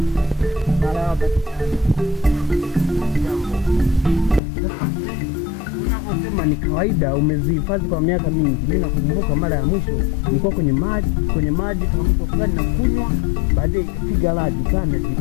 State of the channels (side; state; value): right; drops out; at 4.4 s